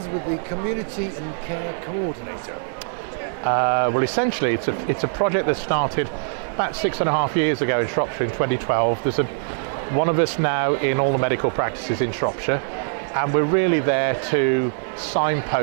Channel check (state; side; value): silent; left; 57 dB below the other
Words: with the Community and Care Coordinator? Well, essentially, it's a project that started about 6.5 years ago in Shropshire in 2012. There's one of us now in all the medical practices in Shropshire, and we're really there to